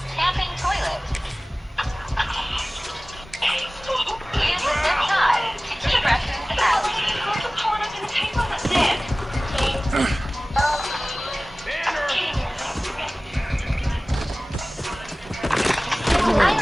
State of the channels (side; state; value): both; normal; correlation 0.98